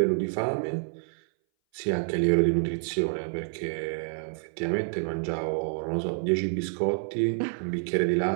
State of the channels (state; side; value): silent; left; 59 dB below the other